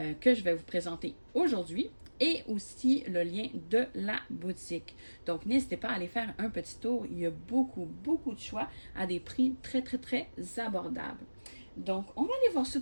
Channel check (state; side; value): inverted; both; correlation -1.00